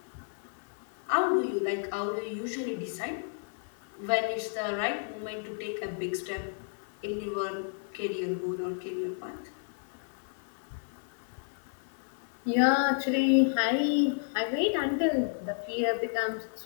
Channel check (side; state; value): right; silent; 57 dB below the other